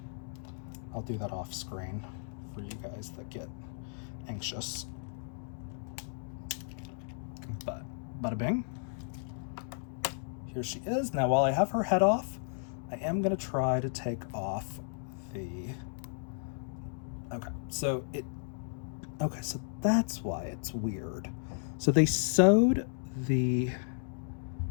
I'll do that off screen for you guys that get anxious. But bada bing. Here she is. Now while I have her head off, I am gonna try to take off the, okay, so that's why it's weird. So they sewed the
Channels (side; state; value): right; silent; digital silence